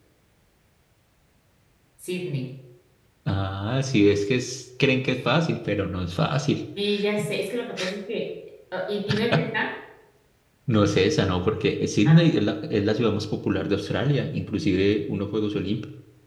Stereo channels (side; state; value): both; identical; correlation 1.00